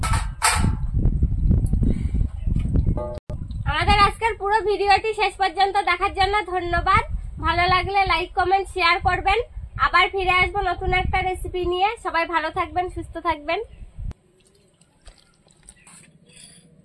আজকের পুরো ভিডিওটি শেষ পর্যন্ত দেখার জন্য ধন্যবাদ। ভালো লাগলে লাইক কমেন্ট শেয়ার করবেন। আবার ফিরে আসবো নতুন একটা রেসিপি নিয়ে। সবাই ভালো থাকবেন, সুস্থ থাকবেন।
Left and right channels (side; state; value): both; identical; correlation 1.00